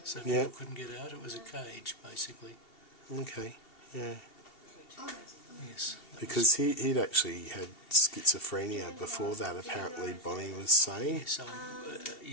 so people couldn't get out. It was a cage, basically. Okay, yeah. Yes. Because he'd actually had schizophrenia before that, apparently Bonnie was saying. Yes,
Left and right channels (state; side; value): late; right; 2.7 ms